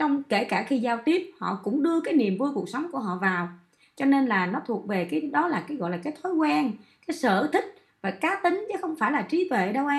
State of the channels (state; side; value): identical; both; correlation 1.00